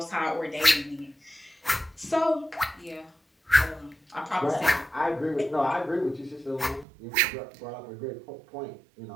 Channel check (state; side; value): drops out; left; at 6.9 s